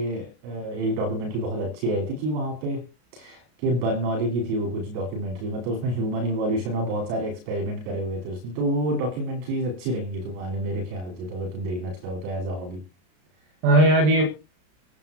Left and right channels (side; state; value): left; late; 33 ms